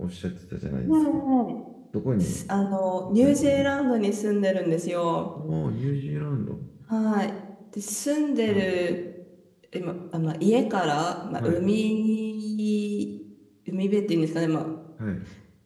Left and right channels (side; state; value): both; identical; correlation 1.00